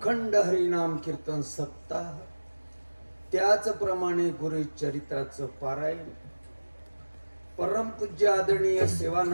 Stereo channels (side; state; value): both; inverted; correlation -1.00